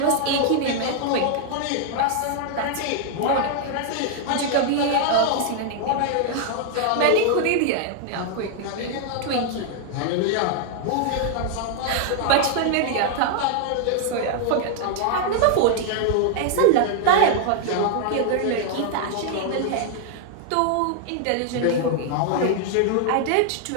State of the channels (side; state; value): both; different; correlation 0.00